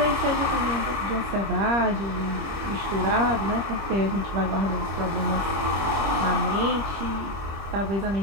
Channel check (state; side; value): late; left; 25 ms